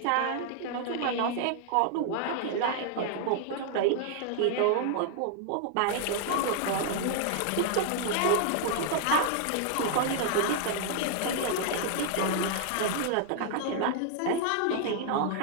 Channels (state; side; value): different; both; correlation 0.00